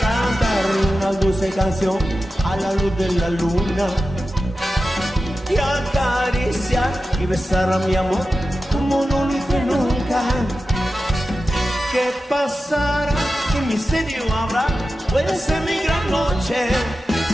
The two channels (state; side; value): normal; both; correlation 0.93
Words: cantar una dulce canción a la luz de la luna y acariciar y besar a mi amor como no lo hice nunca. ¿Qué pasará? ¿Qué misterio habrá? Puede ser mi gran noche.